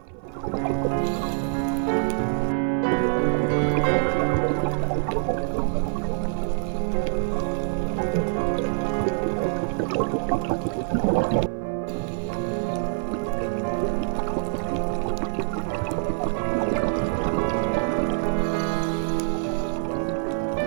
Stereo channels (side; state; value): left; silent; 56 dB below the other